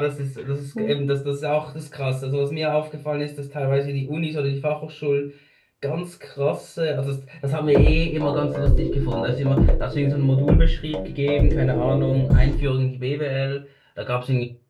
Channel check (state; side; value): identical; both; correlation 1.00